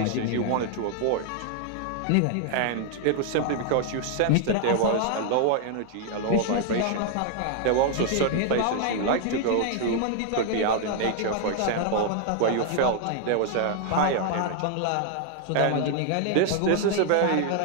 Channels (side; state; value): both; different; correlation 0.00